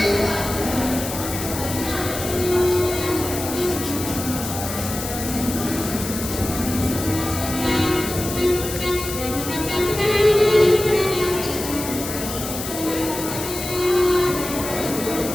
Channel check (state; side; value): noise; left; hiss, 7 dB below the sound